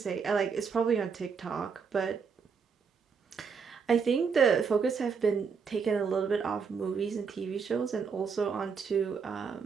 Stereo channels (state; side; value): quieter; left; 5.9 dB